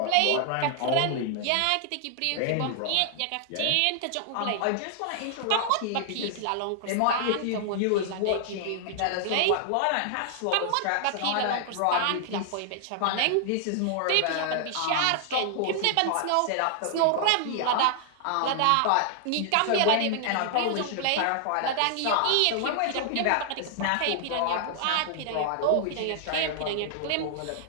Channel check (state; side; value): different; both; correlation 0.00